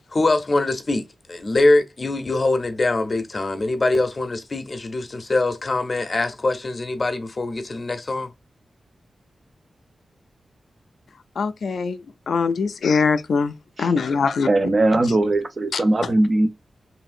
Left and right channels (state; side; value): normal; both; correlation 0.93